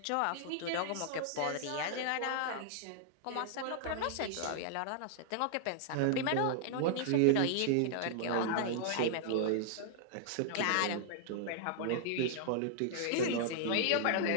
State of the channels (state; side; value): different; both; correlation -0.01